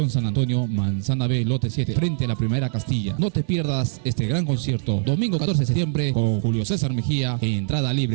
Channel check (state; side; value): silent; left; 64 dB below the other